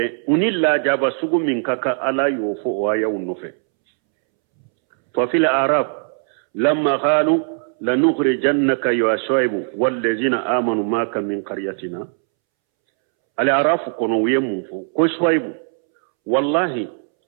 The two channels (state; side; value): silent; left; 66 dB below the other